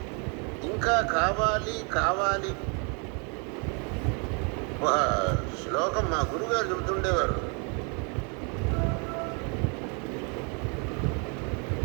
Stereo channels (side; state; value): left; quieter; 35.7 dB